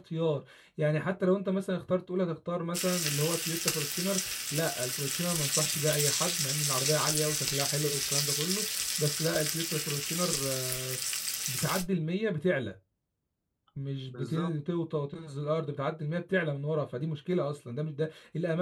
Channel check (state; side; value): identical; both; correlation 1.00